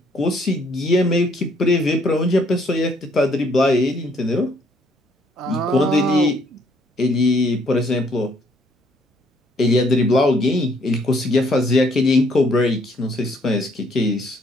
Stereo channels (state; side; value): normal; both; correlation 0.66